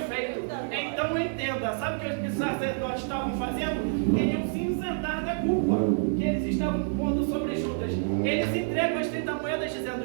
feito. Então entenda, sabe o que os sacerdotes estavam fazendo? Queriam se isentar da culpa que eles estavam pondo sobre Judas. Eles entregam as 30 moedas dizendo:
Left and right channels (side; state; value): left; silent; 59 dB below the other